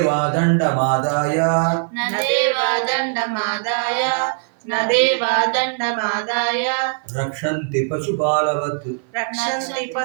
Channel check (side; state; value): left; silent; 56 dB below the other